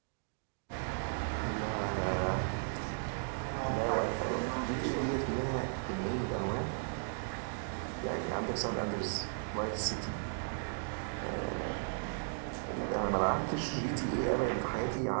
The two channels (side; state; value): left; silent; digital silence